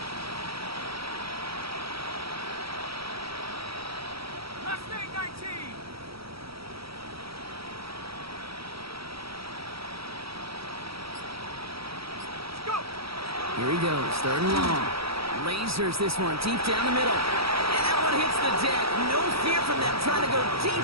Here he goes, 3rd and long. Lasers this one deep down the middle. And that one hits the deck. No fear from them trying to go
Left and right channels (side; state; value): left; late; 0.76 ms